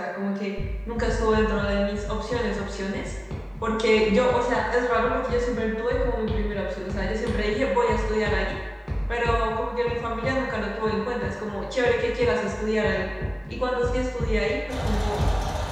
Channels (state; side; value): identical; both; correlation 1.00